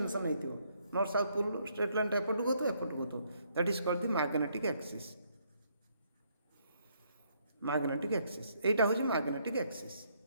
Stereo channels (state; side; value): inverted; both; correlation -0.71